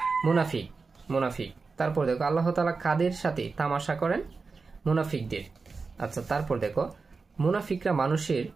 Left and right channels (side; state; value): left; quieter; 4.4 dB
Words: মুনাফিক। তারপর দেখো আল্লাহ তাআলা কাদের সাথে তামাশা করেন? মুনাফিকদের। আচ্ছা তারপর দেখো মুনাফিকরা মানুষের